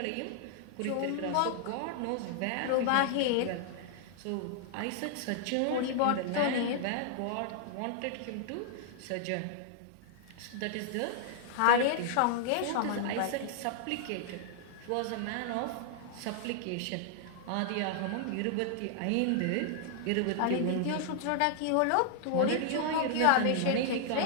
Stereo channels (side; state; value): both; different; correlation -0.01